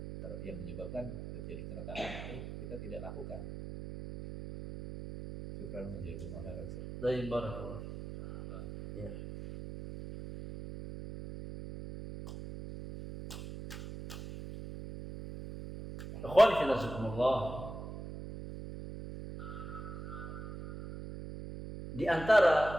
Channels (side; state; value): right; noise; hum, 9 dB below the sound